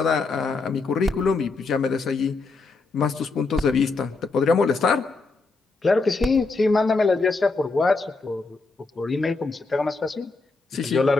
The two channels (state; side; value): quieter; right; 3.8 dB